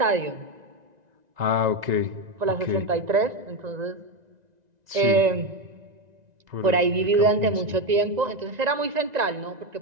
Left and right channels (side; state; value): left; late; 1.9 ms